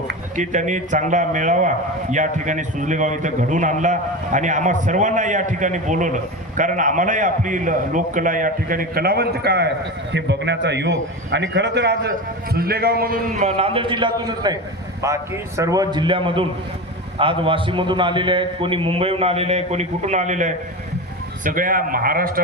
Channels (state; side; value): normal; both; correlation 0.24